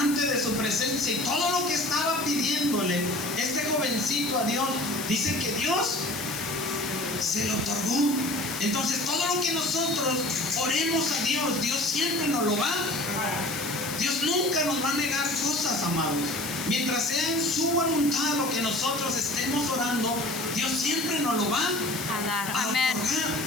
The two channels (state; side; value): noise; left; hiss, 8 dB below the sound